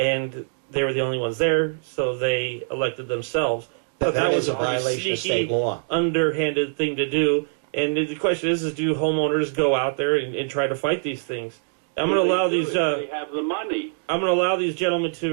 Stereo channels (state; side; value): silent; left; digital silence